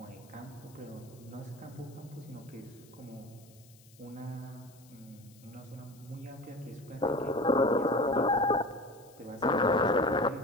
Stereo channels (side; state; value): left; noise; hiss, 26 dB below the sound